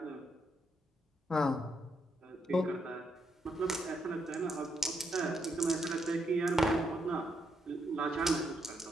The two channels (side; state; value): both; normal; correlation 0.78